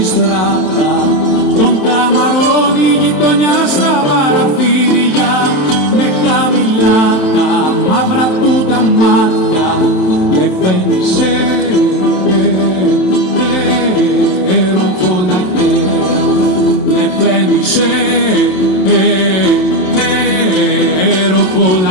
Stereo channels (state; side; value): late; right; 27 ms